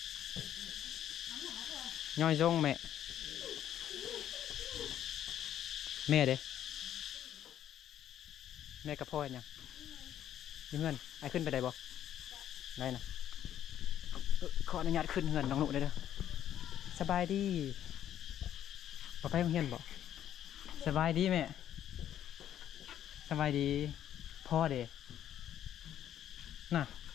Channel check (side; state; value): right; quieter; 10.8 dB